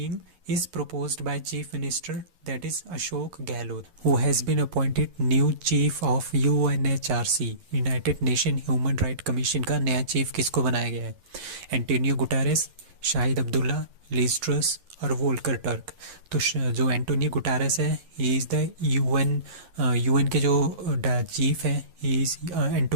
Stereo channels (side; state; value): left; late; 11 ms